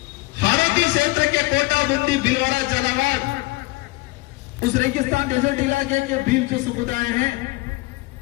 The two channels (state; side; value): quieter; right; 22.0 dB